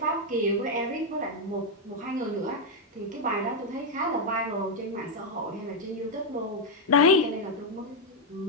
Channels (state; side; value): normal; both; correlation 0.01